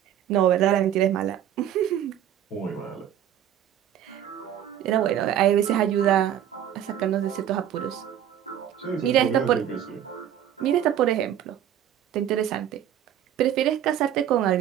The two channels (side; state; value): left; quieter; 10.5 dB